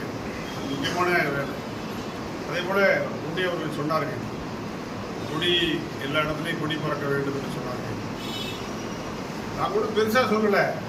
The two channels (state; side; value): identical; both; correlation 1.00